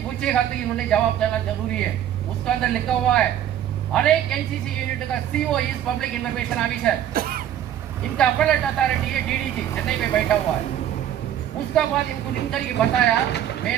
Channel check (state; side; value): quieter; left; 10.8 dB